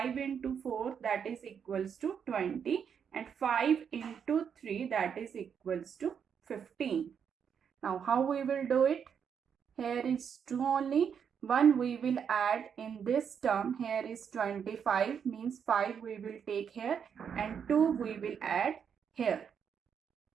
into 4 that is equals to 20, and 5 into 3 that is equals to 15. Now how we will do it? Here is 2 only. 1 we will add in this term. Here is 25, means 5 we will take here and 2 we will add here.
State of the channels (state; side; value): quieter; left; 7.4 dB